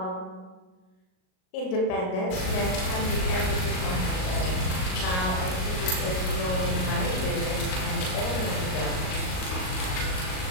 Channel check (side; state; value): right; late; 38 ms